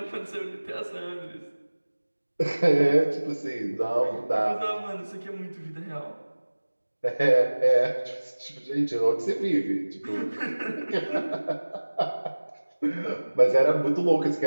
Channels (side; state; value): both; inverted; correlation -1.00